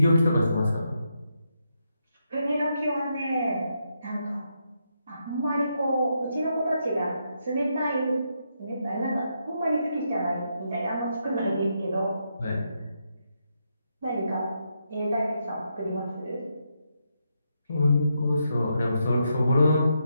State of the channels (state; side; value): inverted; both; correlation -0.81